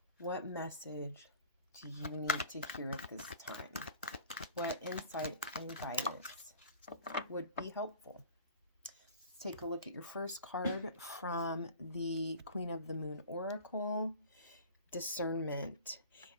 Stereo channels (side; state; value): both; inverted; correlation -0.43